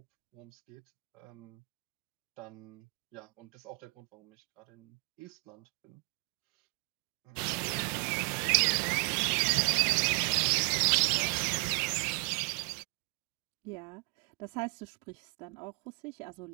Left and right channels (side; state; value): left; quieter; 35.5 dB